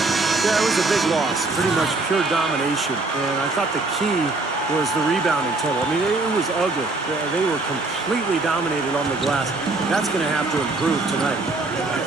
Yeah, it was a big loss. Pretty much pure domination. And I thought the key was the rebounding total. I mean, it was ugly. They were completely dominated on the glass. That's going to have to improve tonight.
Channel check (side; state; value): left; quieter; 3.3 dB